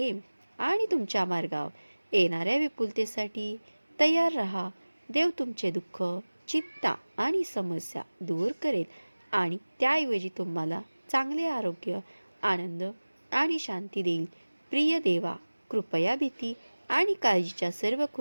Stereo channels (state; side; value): inverted; both; correlation -1.00